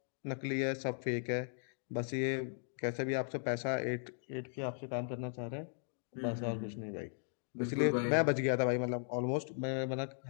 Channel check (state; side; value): silent; right; digital silence